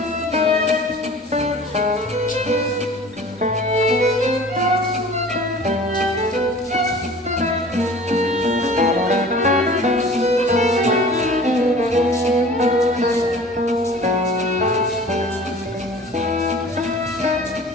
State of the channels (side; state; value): both; normal; correlation 0.44